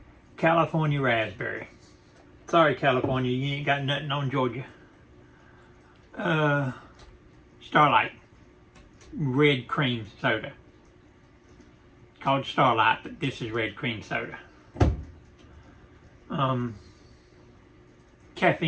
California raspberry. Sorry, California, you ain't got nothing on Georgia. Starlight red cream soda. Called Starlight, but this is red cream soda.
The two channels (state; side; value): identical; both; correlation 1.00